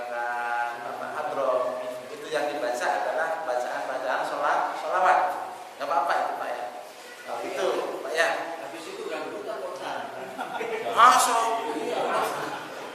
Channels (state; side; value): identical; both; correlation 1.00